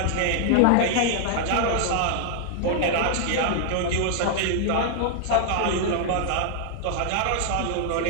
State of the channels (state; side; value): different; both; correlation -0.01